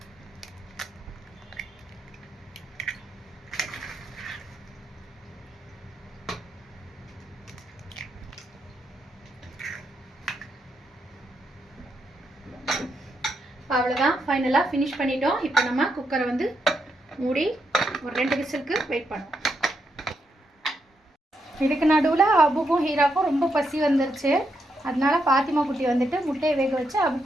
அவ்வளோதான், ஃபைனலாக ஃபினிஷ் பண்ணிட்டோம். இப்போ நம்ம குக்கரை வந்து மூடி ஒரு 2 விசிலுக்கு வெயிட் பண்ணுவோம். இதுக்கு நடுவில் அபுக்கும் ஹீராக்கும் ரொம்ப பசி வந்துருச்சு. அதனால பாத்திமா குட்டி வந்துட்டு முட்டையை வேக வச்சு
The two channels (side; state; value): both; normal; correlation 0.81